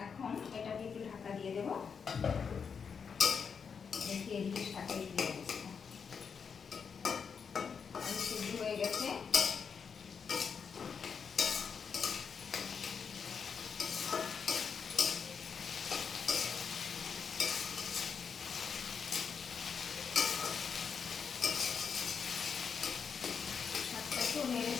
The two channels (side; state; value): right; quieter; 6.3 dB